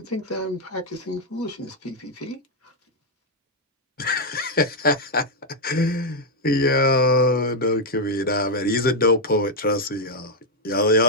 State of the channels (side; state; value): both; normal; correlation 0.01